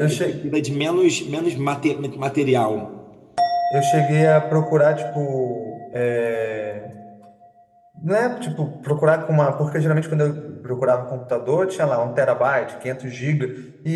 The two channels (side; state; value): both; identical; correlation 1.00